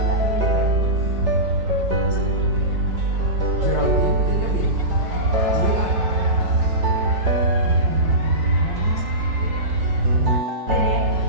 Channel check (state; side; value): late; left; 5.2 ms